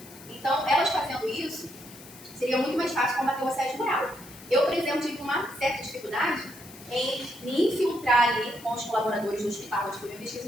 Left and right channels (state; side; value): noise; left; hiss, 19 dB below the sound